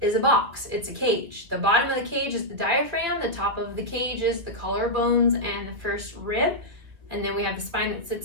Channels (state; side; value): late; left; 2.7 ms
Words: box. It's a cage. The bottom of the cage is the diaphragm. The top of the cage is the collarbones and the first rib. And then we have the spine that